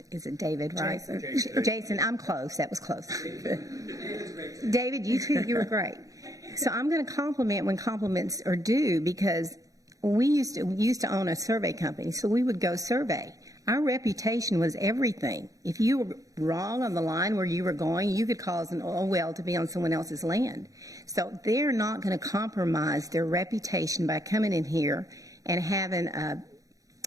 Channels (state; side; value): late; left; 0.17 ms